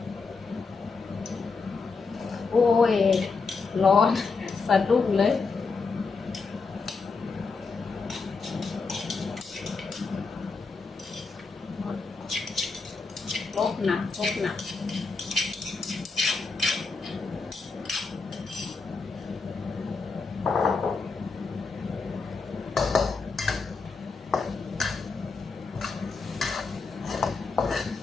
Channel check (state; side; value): quieter; right; 4.5 dB